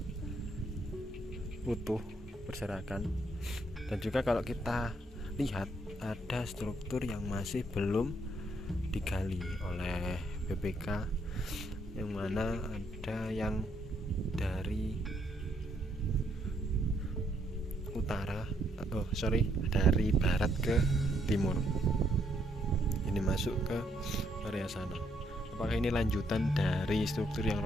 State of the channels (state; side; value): normal; both; correlation 0.72